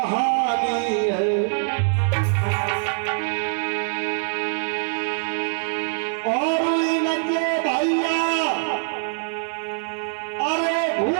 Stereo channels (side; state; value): left; silent; 63 dB below the other